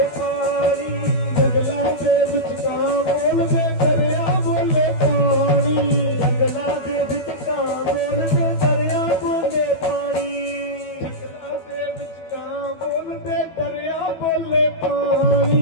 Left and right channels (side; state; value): right; late; 12 ms